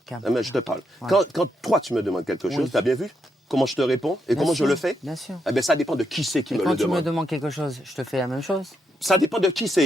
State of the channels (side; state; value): both; normal; correlation 0.80